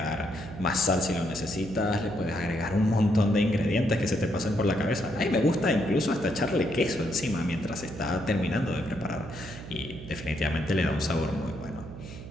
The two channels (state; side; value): noise; right; hum, 12 dB below the sound